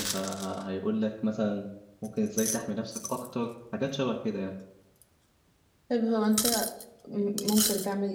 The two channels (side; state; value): both; identical; correlation 1.00